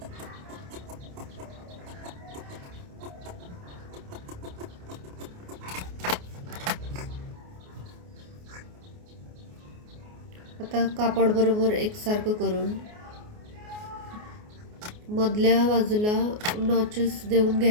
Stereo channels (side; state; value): left; late; 29 ms